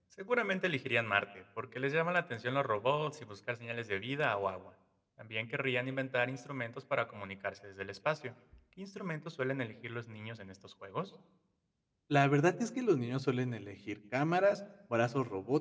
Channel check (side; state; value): both; identical; correlation 1.00